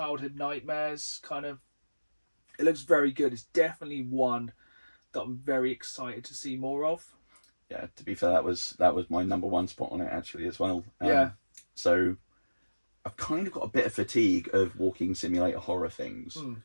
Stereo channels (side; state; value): both; inverted; correlation -1.00